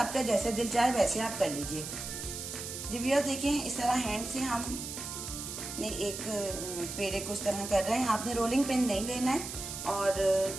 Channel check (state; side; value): noise; right; hiss, 7 dB below the sound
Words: जैसे दिल चाहे वैसे आप कर लीजिए। जी व्यूअर्स देखिए, इस तरह हैंड से हम ने एक पेड़े को इस तरह कर रहे हैं। आपने रोलिंग पिन नहीं लेना है। और